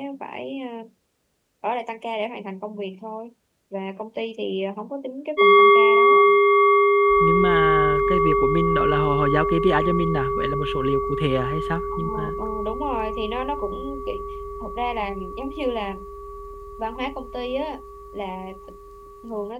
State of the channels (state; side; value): identical; both; correlation 1.00